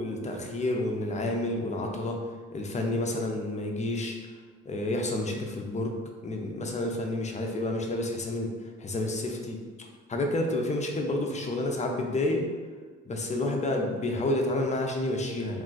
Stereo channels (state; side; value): normal; both; correlation 0.45